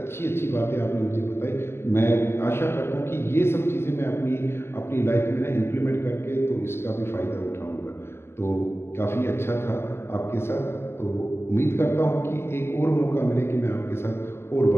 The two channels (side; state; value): right; late; 0.12 ms